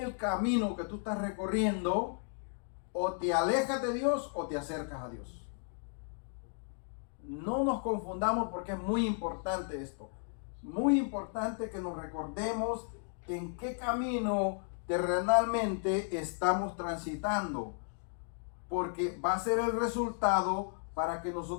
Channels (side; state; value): right; silent; 55 dB below the other